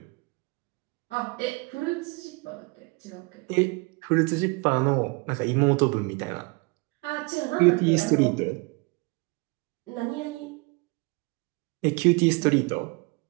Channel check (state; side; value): quieter; left; 28.9 dB